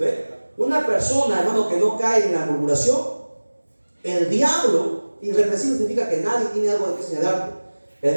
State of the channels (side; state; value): both; inverted; correlation -1.00